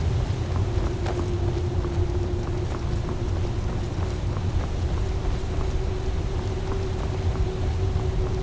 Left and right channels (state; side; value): identical; both; correlation 1.00